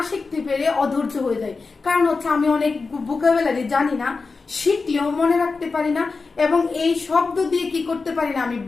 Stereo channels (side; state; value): right; quieter; 4.3 dB